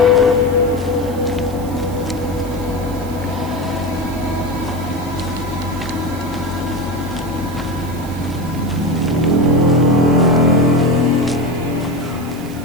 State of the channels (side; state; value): right; noise; hiss, 19 dB below the sound